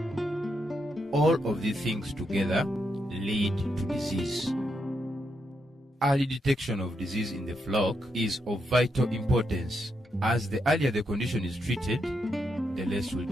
All of these things together lead to disease. Early detection of disease in the flock is of vital importance, as the earlier the condition is treated, the less will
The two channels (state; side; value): normal; both; correlation 0.81